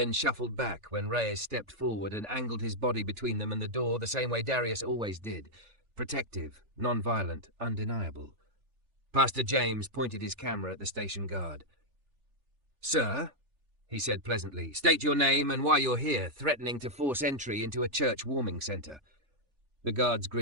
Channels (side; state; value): left; late; 3.4 ms